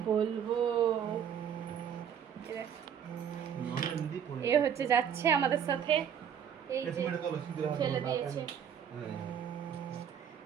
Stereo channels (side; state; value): left; quieter; 8.4 dB